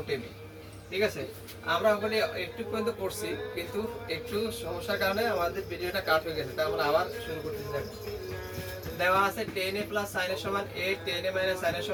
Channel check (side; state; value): both; identical; correlation 1.00